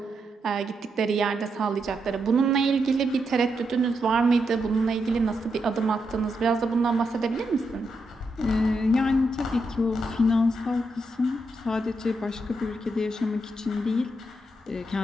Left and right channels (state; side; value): normal; both; correlation 0.82